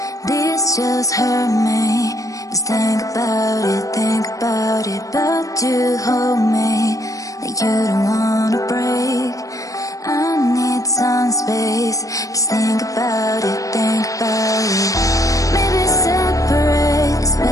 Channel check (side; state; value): right; late; 0.16 ms